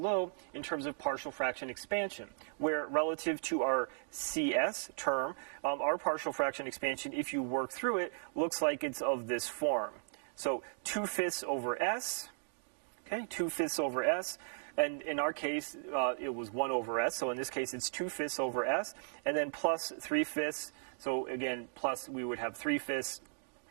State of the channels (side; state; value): left; silent; digital silence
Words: in terms of partial fraction expansion, where relative to our CS term, our partial fraction expansion, if you work through it, looks like it's of this form. So 2/5 over S, okay, 2/5 over S. And in our case, it was 1 over S. So in this case, it's 2/5 over S. And then plus 3/5. So again, plus we would have 3/5